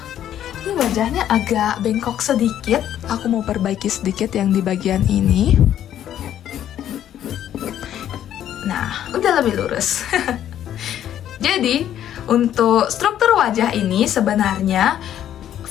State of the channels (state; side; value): quieter; right; 10.9 dB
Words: ini wajahnya agak bengkok sedikit. Aku mau perbaiki sedikit yang di bagian ini. Nah, udah lebih lurus. Jadi, untuk struktur wajah ini sebenarnya